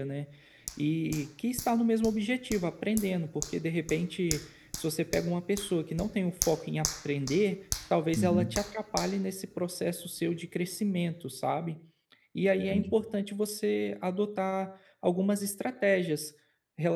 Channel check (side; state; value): both; identical; correlation 1.00